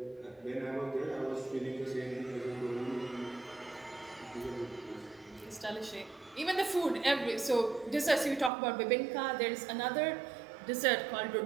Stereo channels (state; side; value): drops out; left; at 8.5 s